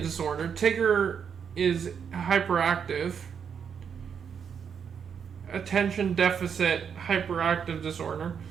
Tigger is hyperactive. Attention deficit hyperactive disorder.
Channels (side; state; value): left; quieter; 7.2 dB